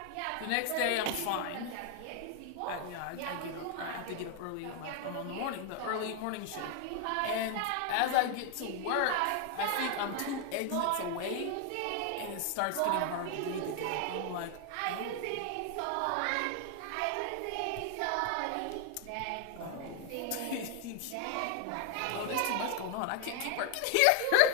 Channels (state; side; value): different; both; correlation 0.00